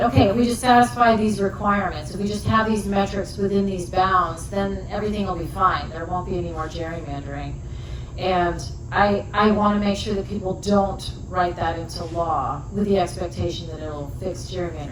okay, if we just satisfy these requirements, if we just have these metrics within these bounds, then everything will be fine. There won't be any more gerrymandering. And I want to make sure that people don't write that into law with the expectation that it'll fix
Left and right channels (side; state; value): both; identical; correlation 1.00